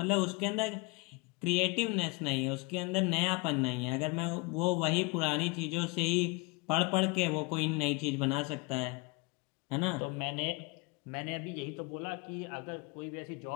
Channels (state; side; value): quieter; right; 27.8 dB